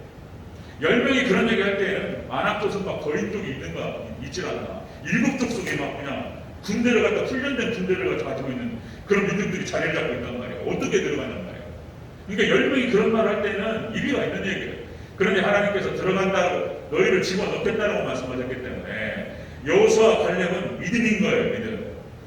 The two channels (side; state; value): both; identical; correlation 1.00